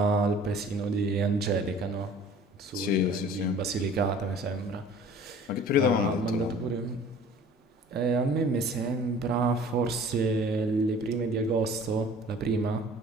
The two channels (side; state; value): both; normal; correlation 0.48